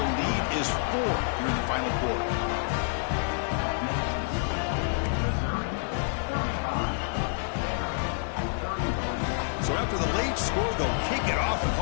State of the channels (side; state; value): right; silent; digital silence